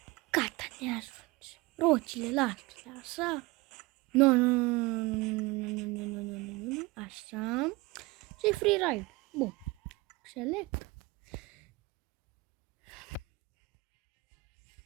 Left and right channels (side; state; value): left; quieter; 21.8 dB